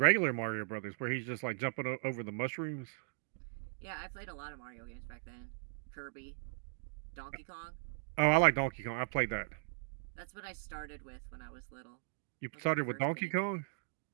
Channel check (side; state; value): left; silent; digital silence